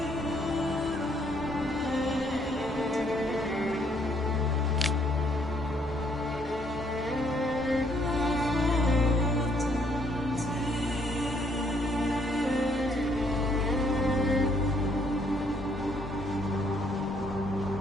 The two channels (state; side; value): normal; both; correlation 0.68